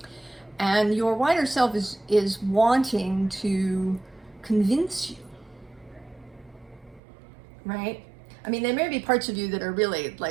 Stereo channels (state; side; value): drops out; left; at 7.0 s